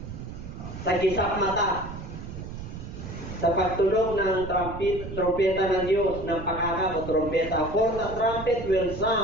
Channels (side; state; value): right; noise; rumble, 10 dB below the sound